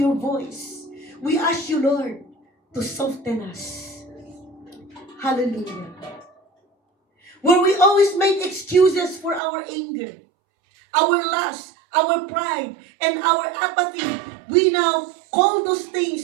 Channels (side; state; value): left; drops out; at 9.4 s